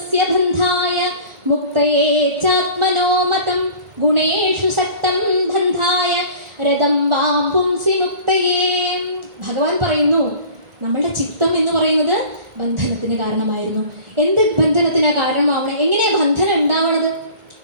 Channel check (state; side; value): late; left; 1.4 ms